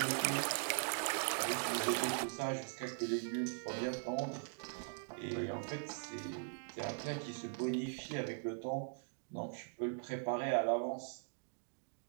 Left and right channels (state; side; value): silent; left; digital silence